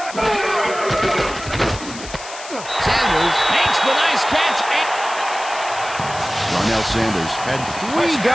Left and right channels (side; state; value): left; noise; hiss, 13 dB below the sound